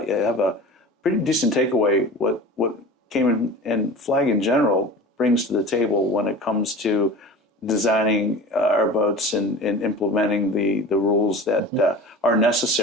have a pretty decent takeaway. What Cayman and Flag in general brings to the table when it comes to designing our boats and implementing the rules that are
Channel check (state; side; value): normal; both; correlation 0.36